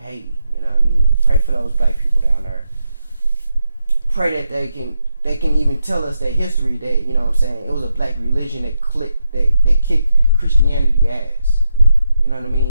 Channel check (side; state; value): both; inverted; correlation -0.83